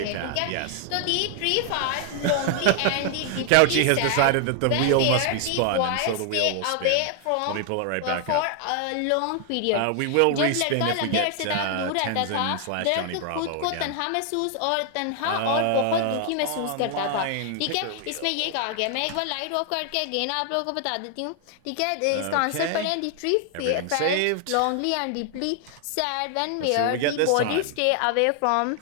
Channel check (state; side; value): different; both; correlation 0.00